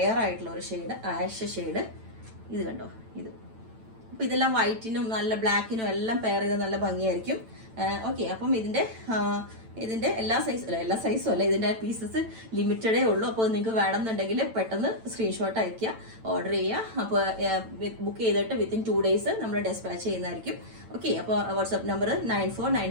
ആയിട്ടുള്ള ഒരു ഷെയ്ഡ്, ആഷ് ഷെയ്ഡ്. ഇത് കണ്ടോ. അപ്പൊ ഇതെല്ലാം വൈറ്റിനും നല്ല ബ്ലാക്കിനും എല്ലാം പെയർ ചെയ്താൽ നല്ല ഭംഗിയായിരിക്കും. ഓക്കെ, അപ്പം ഇതിന്റെ എല്ലാ സൈസും അല്ല, ഇതിന്റെ പീസസ് ലിമിറ്റഡേ ഉള്ളൂ. അപ്പോൾ നിങ്ങൾക്ക് വേണമെന്നുണ്ടെങ്കിൽ പെട്ടെന്ന് സ്ക്രീൻഷോട്ട് അയക്കുക, ഓർഡർ ചെയ്യുക. അപ്പോൾ ബുക്ക് ചെയ്തിട്ട് വിത്തിൻ 2 days നമ്മൾ ഡെസ്പാച്ച് ചെയ്യുന്നതായിരിക്കും. ഓക്കെ, അപ്പോൾ വാട്സ്ആപ്പ് നമ്പർ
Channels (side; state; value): left; late; 9.0 ms